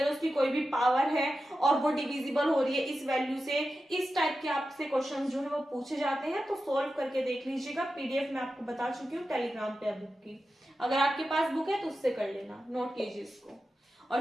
उसकी कोई भी पावर है और वो डिविजिबल हो रही है इस वैल्यू से, इस टाइप के आपसे क्वेश्चन जो है वो पूछे जाते हैं। तो सोल्व करके देख लीजिएगा, पीडीएफ में आपको बता चुकी हूँ टेलीग्राम पे बुक की, अगर आपके पास बुक है तो उससे कर लेना, नोट कीजिए इसको,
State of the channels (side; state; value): both; normal; correlation 0.92